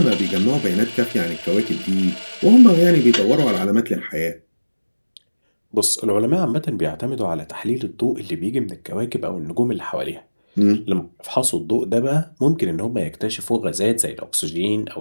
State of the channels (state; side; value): inverted; both; correlation -1.00